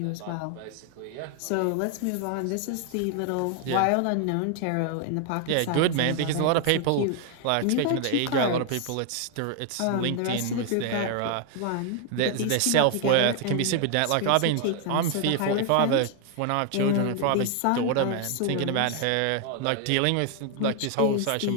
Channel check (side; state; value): both; different; correlation 0.00